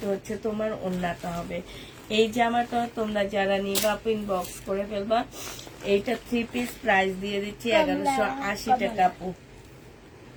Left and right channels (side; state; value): both; identical; correlation 1.00